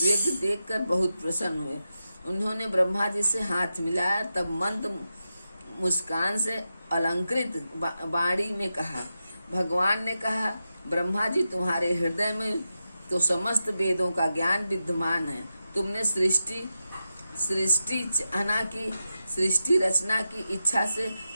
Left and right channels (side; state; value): both; inverted; correlation -0.90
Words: देखकर बहुत प्रसन्न हुए। उन्होंने ब्रह्मा जी से हाथ मिलाया, तब मंद मुस्कान से अलंकृत वाणी में कहा। भगवान ने कहा, ब्रह्मा जी, तुम्हारे हृदय में तो समस्त वेदों का ज्ञान विद्यमान है। तुमने सृष्टि रचना की इच्छा से